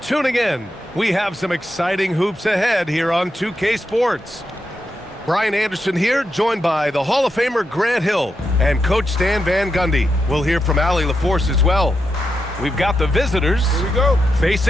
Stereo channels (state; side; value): normal; both; correlation 0.85